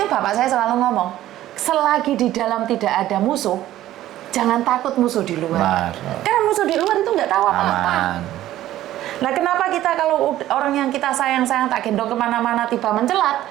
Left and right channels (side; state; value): left; quieter; 13.9 dB